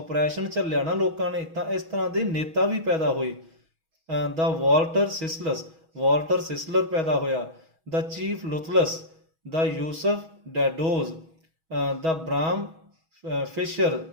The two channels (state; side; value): late; left; 6.2 ms